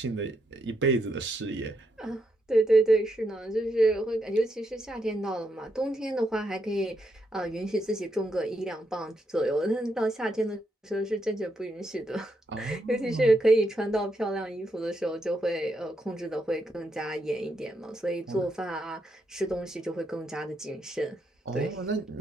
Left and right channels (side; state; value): both; normal; correlation 0.80